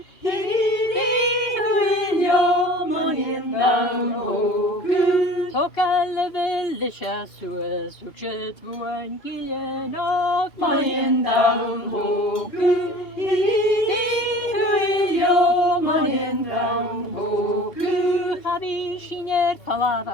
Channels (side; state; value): right; late; 2.8 ms